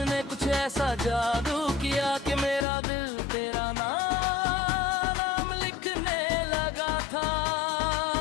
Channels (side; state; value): right; drops out; at 2.7 s